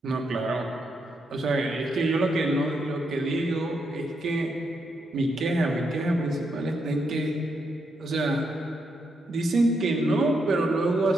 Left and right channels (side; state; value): both; normal; correlation 0.80